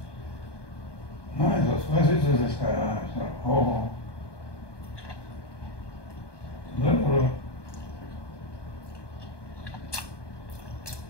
Was ist das? Oh.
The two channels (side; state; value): right; late; 1.2 ms